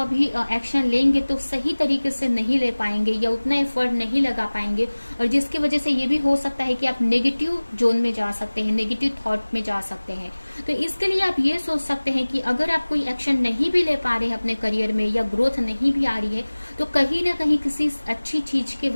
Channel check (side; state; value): both; inverted; correlation -1.00